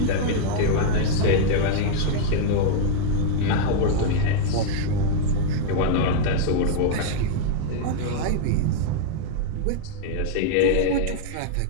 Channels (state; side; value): different; both; correlation -0.01